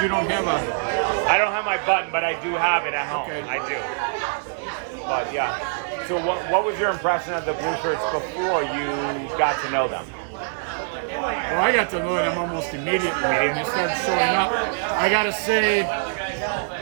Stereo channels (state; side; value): silent; left; digital silence